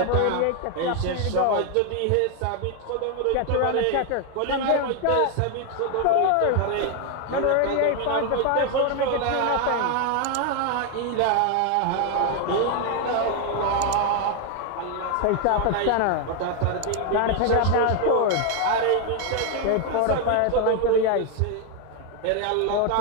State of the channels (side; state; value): both; different; correlation 0.01